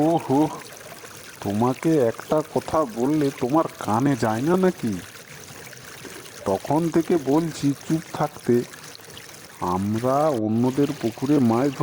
হো, তোমাকে একটা কথা বললে তোমার কানে যায় না নাকি? তখন থেকে বলছি চুপ থাকতে। আমরা অন্যদের পুকুরে মাছ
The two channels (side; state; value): both; identical; correlation 1.00